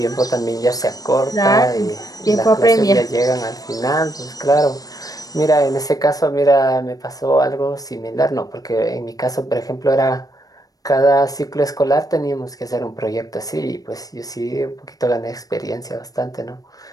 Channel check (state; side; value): late; right; 0.18 ms